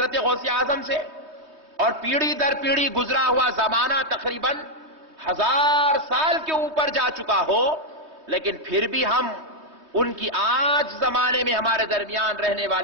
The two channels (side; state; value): left; late; 3.2 ms